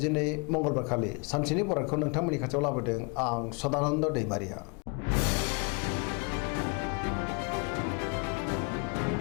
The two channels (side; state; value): right; quieter; 34.4 dB